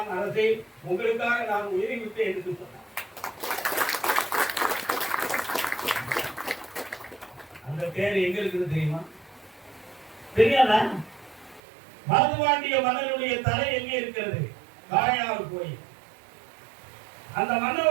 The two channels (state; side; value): drops out; left; at 11.6 s